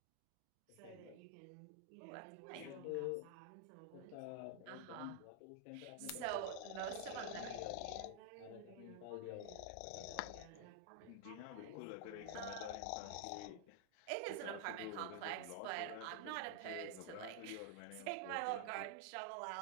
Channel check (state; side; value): different; both; correlation 0.00